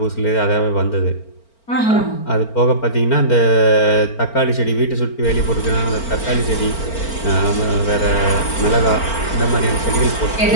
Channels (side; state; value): right; late; 4.4 ms